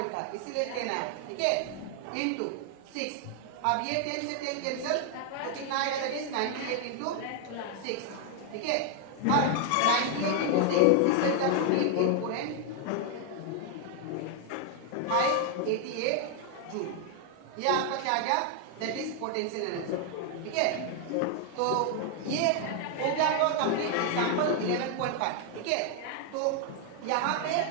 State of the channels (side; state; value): both; different; correlation 0.00